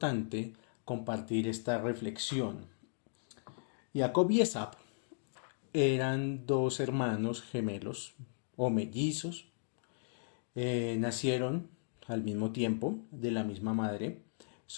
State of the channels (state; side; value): silent; right; digital silence